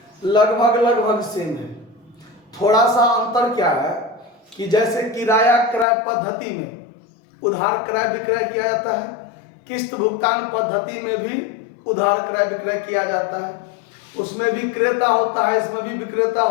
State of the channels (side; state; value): right; drops out; at 5.9 s